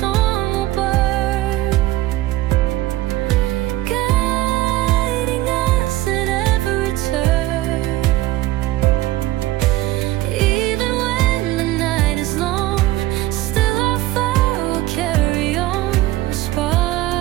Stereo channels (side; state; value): left; quieter; 16.5 dB